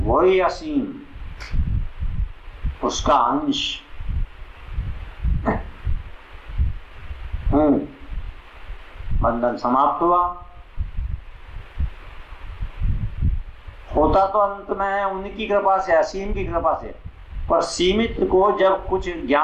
वही असीम, उसका अंश हूं, बंधन समाप्त हुआ। होता तो अंत में है उनकी कृपा से, असीम की कृपा से, पर सीमित को जब कुछ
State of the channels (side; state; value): both; identical; correlation 1.00